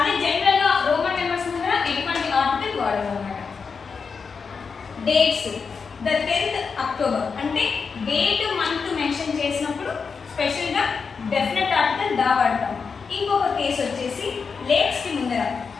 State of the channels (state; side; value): quieter; right; 5.4 dB